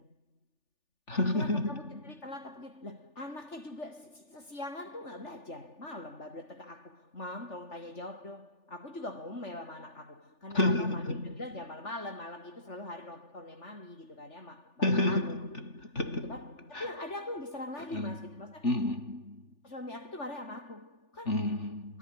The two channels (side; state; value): right; late; 3.4 ms